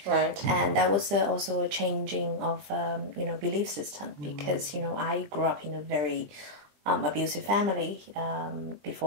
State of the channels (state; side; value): late; left; 20 ms